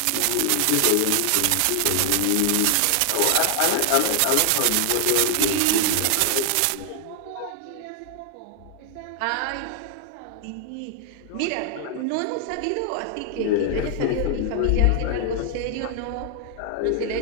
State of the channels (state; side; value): different; both; correlation 0.00